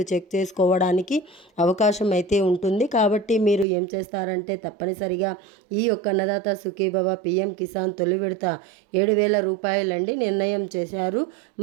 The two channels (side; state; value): left; drops out; at 3.7 s